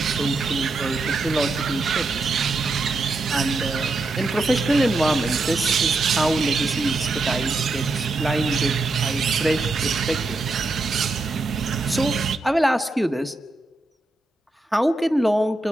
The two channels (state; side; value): quieter; left; 3.0 dB